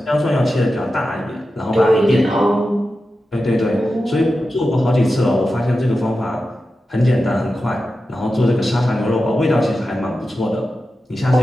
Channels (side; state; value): both; normal; correlation 0.92